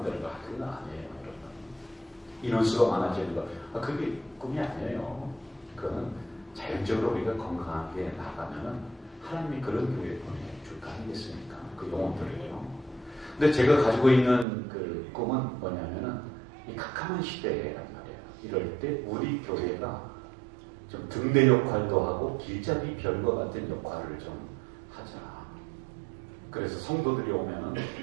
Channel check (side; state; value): left; drops out; at 14.5 s